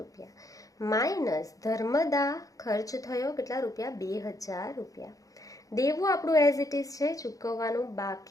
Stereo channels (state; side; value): late; right; 0.17 ms